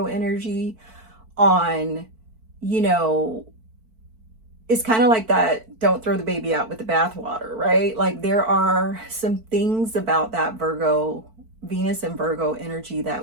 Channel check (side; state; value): left; late; 4.5 ms